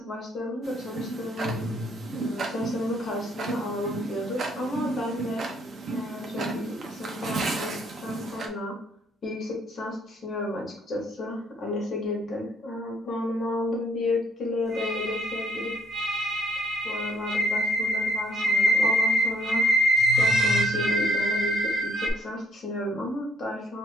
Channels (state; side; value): normal; both; correlation 0.67